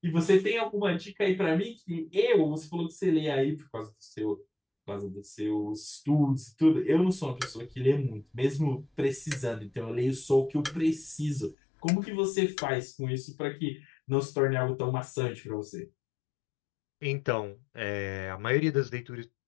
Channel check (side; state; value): right; drops out; at 11.6 s